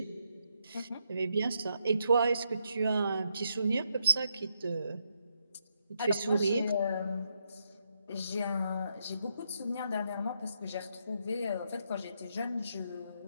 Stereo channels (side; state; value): both; inverted; correlation -0.79